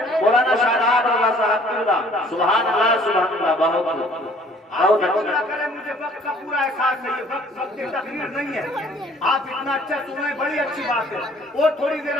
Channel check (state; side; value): normal; both; correlation 0.56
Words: مولانا شاداب اللہ صاحب کی اللہ۔ سبحان اللہ، سبحان اللہ، بہت اللہ کرے مجھے وقت کا پورا احساس نہیں ہے، وقت کی تقریر نہیں ہے۔ آپ اتنا اچھا سنیں، بڑی اچھی بات ہے، اور تھوڑی دیر